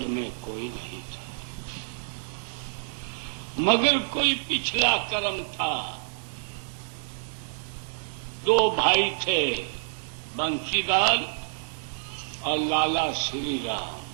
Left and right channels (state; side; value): silent; left; 58 dB below the other